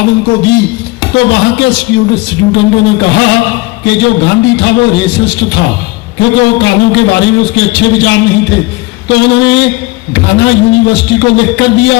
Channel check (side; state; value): right; quieter; 23.2 dB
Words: उनको दी, तो वहां के स्टूडेंटों ने कहा कि जो गांधी था वो रेसिस्ट था, क्योंकि वो कालों के बारे में उसके अच्छे विचार नहीं थे। तो उन्होंने घाना यूनिवर्सिटी को लिख कर